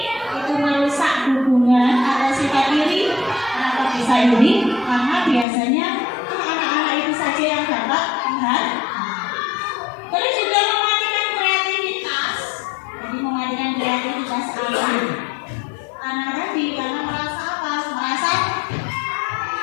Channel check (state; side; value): drops out; right; at 5.5 s